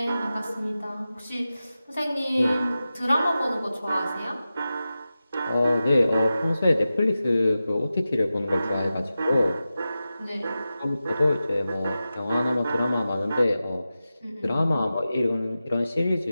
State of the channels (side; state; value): both; inverted; correlation -0.93